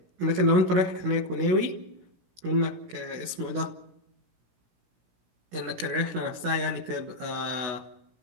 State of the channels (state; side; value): late; left; 16 ms